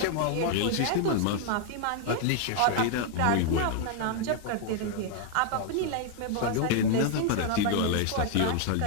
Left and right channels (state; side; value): different; both; correlation 0.00